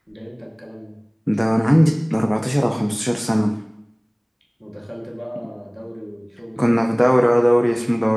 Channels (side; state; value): both; identical; correlation 1.00